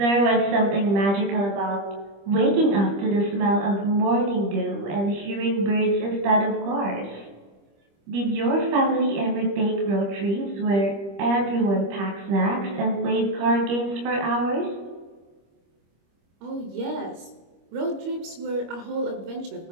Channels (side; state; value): left; late; 25 ms